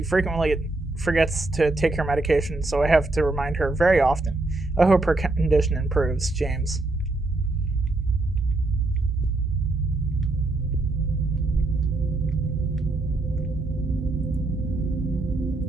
frequently forgets to take her medication, so I have to remind her very often. I hope her condition improves, James.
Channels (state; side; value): quieter; left; 3.0 dB